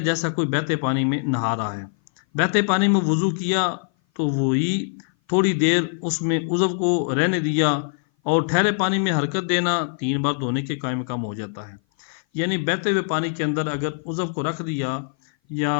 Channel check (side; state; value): right; silent; 57 dB below the other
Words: جیسا کوئی بہتے پانی میں نہا رہا ہے۔ بہتے پانی میں وضو کیا تو وہی تھوڑی دیر اس میں عضو کو رہنے دیا، اور ٹھہرے پانی میں حرکت دینا 3 بار دھونے کے قائم مقام ہو جاتا ہے۔ یعنی بہتے ہوئے پانی کے اندر اگر عضو کو رکھ دیا یا